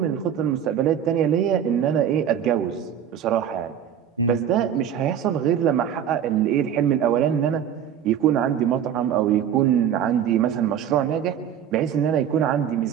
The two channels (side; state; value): left; quieter; 9.2 dB